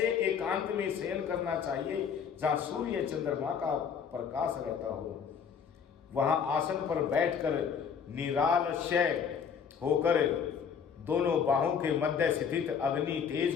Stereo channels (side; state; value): right; quieter; 6.9 dB